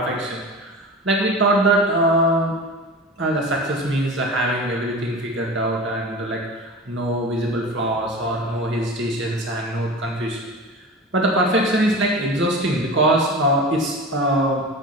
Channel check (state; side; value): normal; both; correlation 0.32